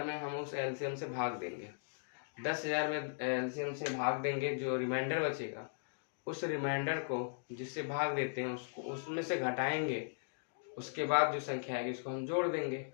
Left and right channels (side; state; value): right; silent; digital silence